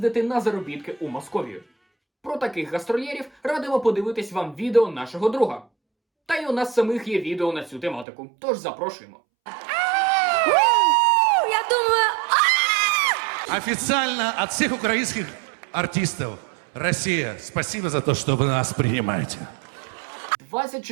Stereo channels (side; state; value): left; drops out; at 8.1 s